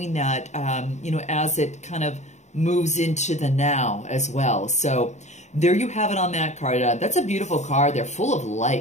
that, you know, as it kind of moves into the now as well. So there you have it on that card. That's a beautiful card. They're full of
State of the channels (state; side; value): late; right; 0.34 ms